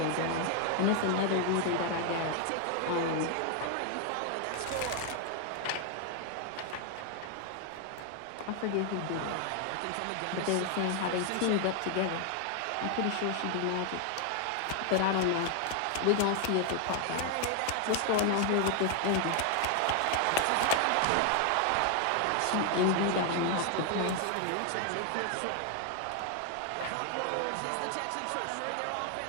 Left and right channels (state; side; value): different; both; correlation 0.00